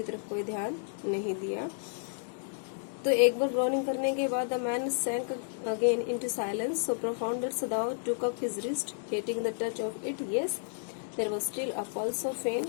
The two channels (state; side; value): silent; right; digital silence